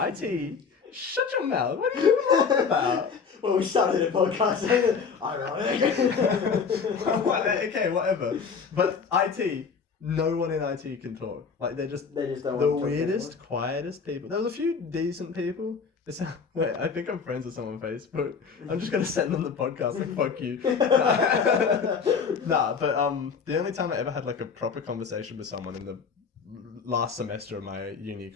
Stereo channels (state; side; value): quieter; right; 5.8 dB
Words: shut your mouth. What are you talking about? Well, we started a podcast. Ironic. Okay, whatever. But IT, no one in IT can talk. Like They just don't the want to talk weirdest, quietest people. There was a few decent people. Wait, I think I'm friends with someone on Facebook. I'm just gonna send them the podcast and fuck you. Nah, but the only time I ever had like a proper conversation with someone in the last semester of my uni